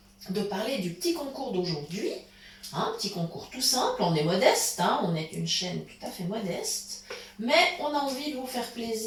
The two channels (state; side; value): identical; both; correlation 1.00